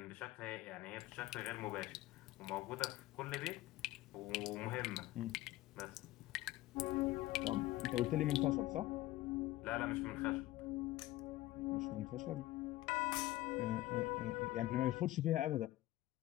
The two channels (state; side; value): quieter; right; 16.7 dB